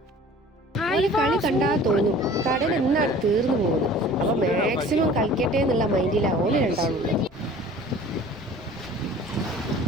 ഈ കളി കണ്ടാ തോന്നും കടൽ എന്നാണ് തീർന്നു പോകുന്നത്. അപ്പൊ മാക്സിമം കളിക്കട്ടെ എന്നുള്ള മൈൻഡിലാ ഓല് രണ്ടാളും.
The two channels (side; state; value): both; normal; correlation 0.46